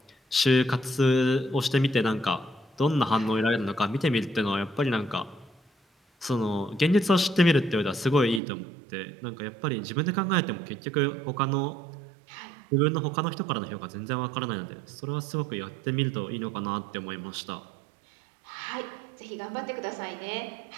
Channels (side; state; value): left; drops out; at 8.4 s